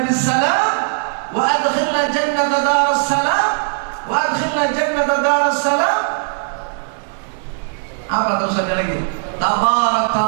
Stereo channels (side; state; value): left; silent; digital silence